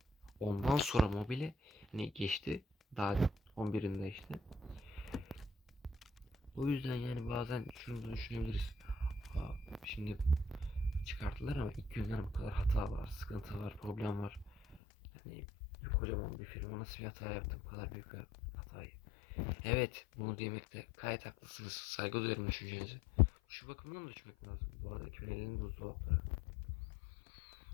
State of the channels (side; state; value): right; drops out; at 14.8 s